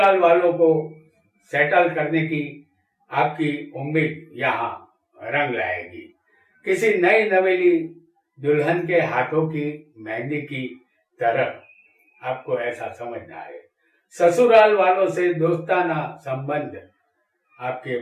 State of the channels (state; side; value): identical; both; correlation 1.00